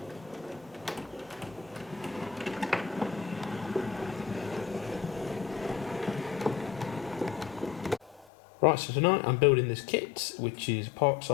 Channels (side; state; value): right; drops out; at 8.2 s